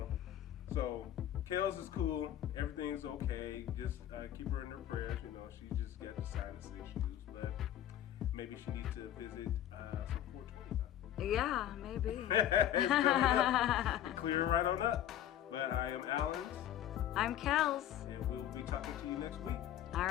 so Kells is cool. Everything's okay. Just keep her in her prayers. You know, she just got the sinus issues, but maybe she needs to visit some 420. Yeah, maybe. It's coming up. Clear it right on up. But I am Alan, I'm Kells. and we'll be talking to you next week. All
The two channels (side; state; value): right; quieter; 11.5 dB